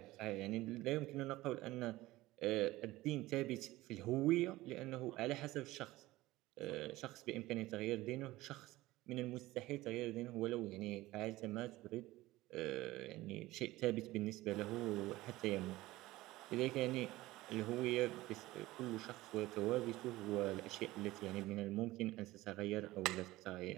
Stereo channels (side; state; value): left; quieter; 18.0 dB